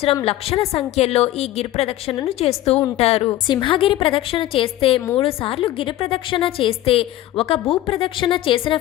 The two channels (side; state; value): right; quieter; 14.5 dB